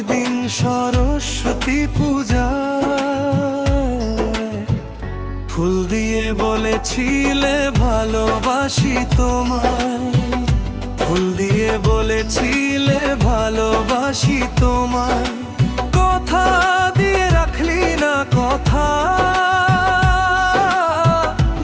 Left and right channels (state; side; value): identical; both; correlation 1.00